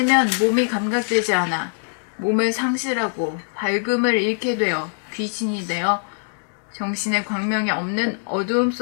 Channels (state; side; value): silent; right; digital silence